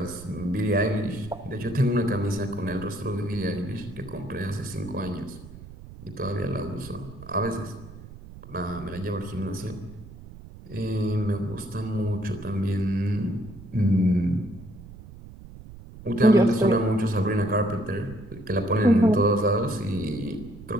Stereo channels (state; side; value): noise; right; rumble, 16 dB below the sound